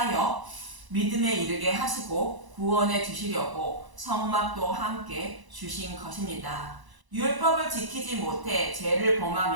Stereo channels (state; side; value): late; left; 1.0 ms